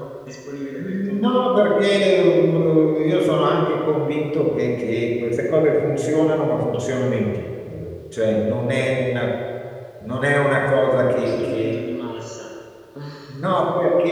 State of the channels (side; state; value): both; identical; correlation 1.00